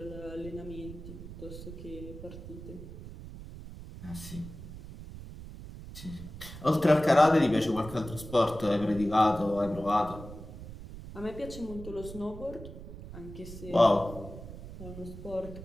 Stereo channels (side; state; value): right; noise; rumble, 12 dB below the sound